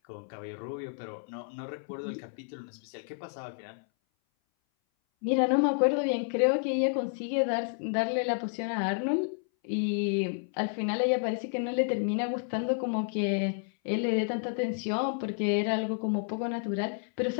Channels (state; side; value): silent; right; 57 dB below the other